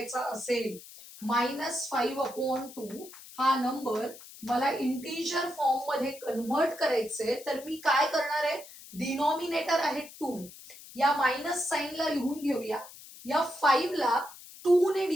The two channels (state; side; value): noise; left; hiss, 17 dB below the sound